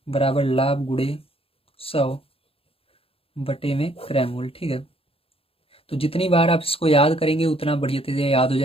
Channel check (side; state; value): right; late; 0.27 ms